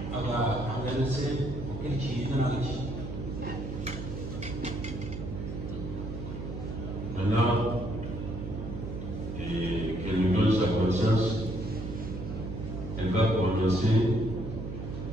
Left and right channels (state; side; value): noise; right; hum, 7 dB below the sound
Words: أبا عمل سيد وكل شيء ناجي. Maintenant, qu'elle nous donne sa conscience, elle va prononcer